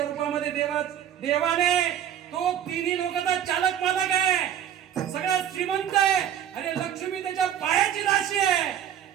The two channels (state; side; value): quieter; left; 10.0 dB